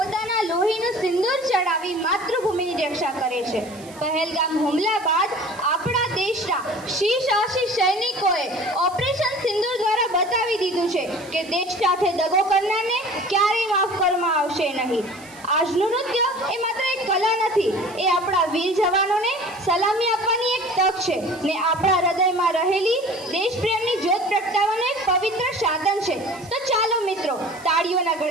લોહીનું સિંદૂર ચડાવી માતૃભૂમિની રક્ષા કરે છે. પહેલગામ હુમલા બાદ આપણા દેશના સાહસી સૈનિકોએ ઓપરેશન સિંદૂર દ્વારા બતાવી દીધું છે કે દેશ સાથે દગો કરનારને ક્યારેય માફ કરવામાં આવશે નહીં. આજનું નૃત્ય એ માત્ર એક કલા નથી, એ આપણા વીર જવાનોને સલામી આપવાની એક તક છે ને આપણા હૃદયમાં રહેલી દેશપ્રેમની જ્યોત પ્રગટાવવાનું એક પવિત્ર સાધન છે. તો ચાલો મિત્રો, તાળીઓના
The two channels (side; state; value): right; noise; hiss, 21 dB below the sound